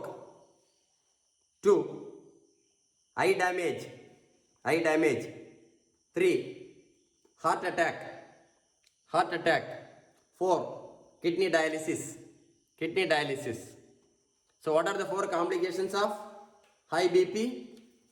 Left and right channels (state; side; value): identical; both; correlation 1.00